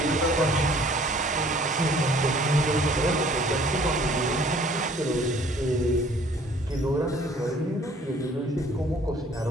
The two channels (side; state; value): both; normal; correlation 0.56